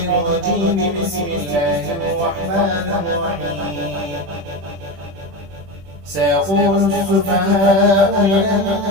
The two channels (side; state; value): left; late; 20 ms